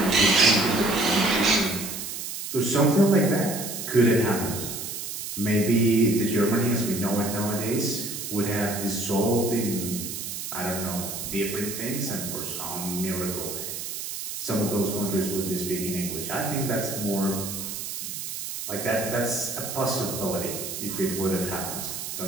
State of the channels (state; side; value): noise; right; hiss, 6 dB below the sound